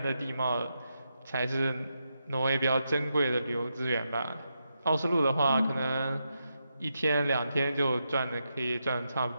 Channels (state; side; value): inverted; both; correlation -0.85